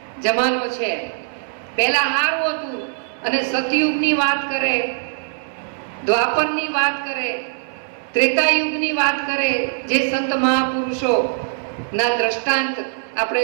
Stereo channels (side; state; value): left; silent; 65 dB below the other